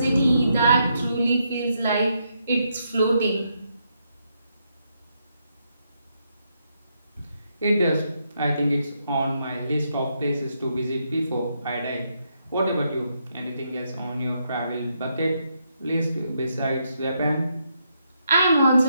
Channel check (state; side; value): inverted; both; correlation -0.79